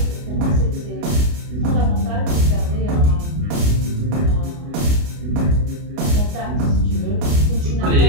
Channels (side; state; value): left; late; 29 ms